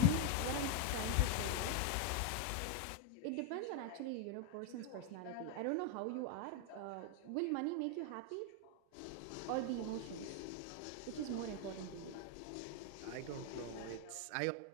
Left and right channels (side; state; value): both; different; correlation 0.01